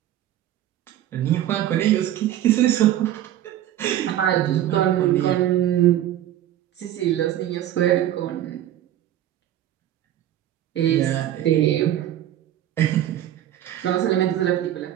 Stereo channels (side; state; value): left; quieter; 12.2 dB